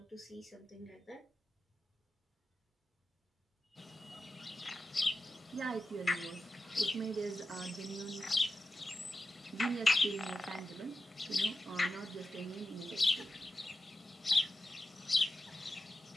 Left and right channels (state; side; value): normal; both; correlation 0.91